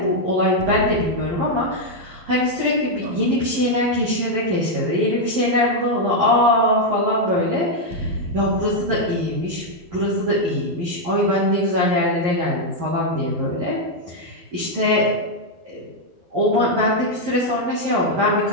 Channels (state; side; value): late; left; 11 ms